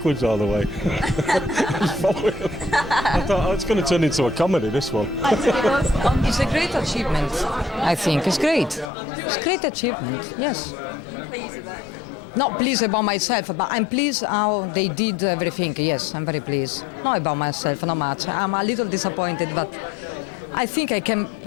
all the way. I thought, it's going to turn into a comedy, this one. It's a great achievement, I think. It's great. It's a great achievement, yes. Pleased with that? Not pleased about myself, but I'm pleased how they did everything. Yes, I'm very pleased. Not about myself, not much. I'm a little disappointed, but I think I can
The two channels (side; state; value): right; drops out; at 8.9 s